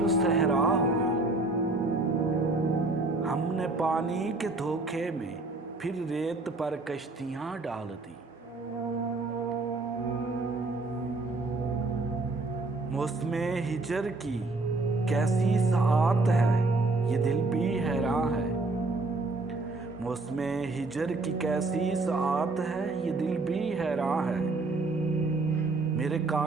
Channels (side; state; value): left; quieter; 3.3 dB